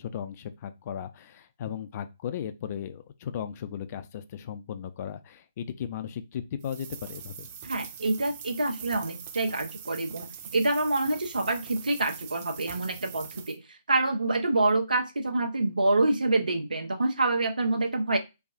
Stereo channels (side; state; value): both; inverted; correlation -0.80